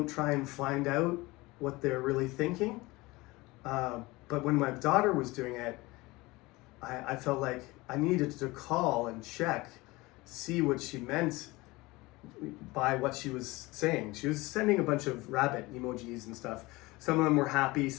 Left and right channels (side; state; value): right; quieter; 21.7 dB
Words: try and find out what they're really thinking. But when my daughter was doing it, I felt like I needed to call and check to see what she meant by what she was saying. She was sending a bunch of rabbit emojis and stuff. Some of them were happy,